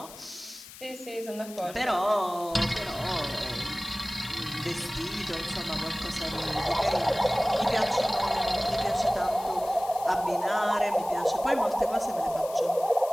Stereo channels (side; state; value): left; noise; hiss, 16 dB below the sound